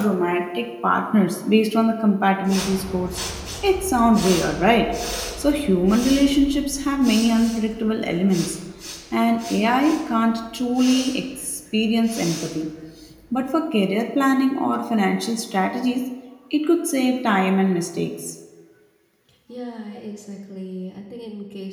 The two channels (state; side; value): identical; both; correlation 1.00